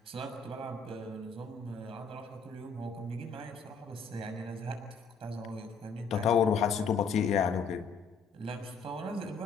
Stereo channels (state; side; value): quieter; right; 5.0 dB